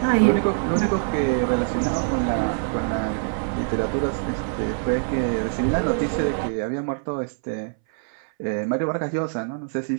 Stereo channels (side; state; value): left; silent; 60 dB below the other